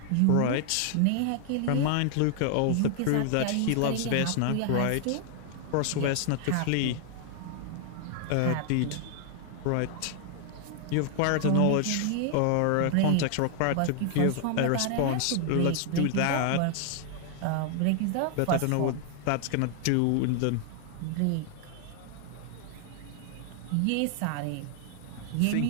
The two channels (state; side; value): different; both; correlation 0.00